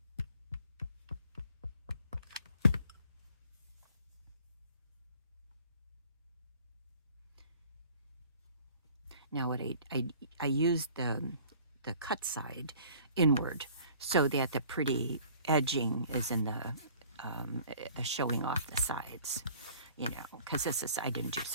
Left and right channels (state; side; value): inverted; both; correlation -0.52